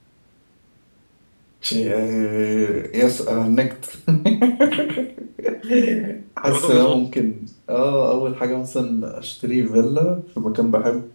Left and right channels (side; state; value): both; inverted; correlation -1.00